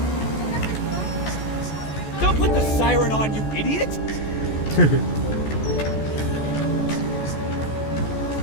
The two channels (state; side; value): late; right; 14 ms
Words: Don't put the siren on, you idiot!